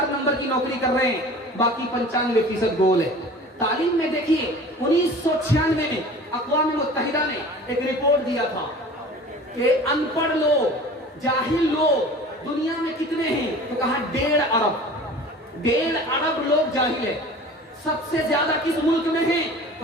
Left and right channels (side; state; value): both; normal; correlation 0.41